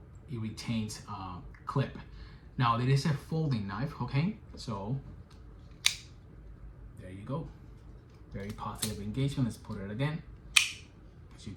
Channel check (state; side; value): identical; both; correlation 1.00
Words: it retains clip. Now, it is a folding knife, okay? So, there you go. Very positive engagement. Let's put it again, so you